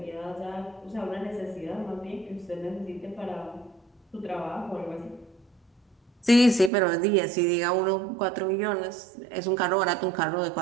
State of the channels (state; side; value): drops out; left; at 6.7 s